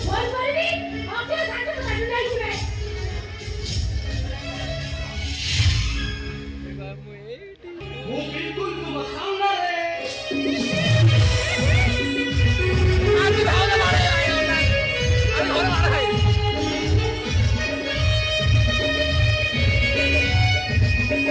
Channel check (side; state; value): both; identical; correlation 1.00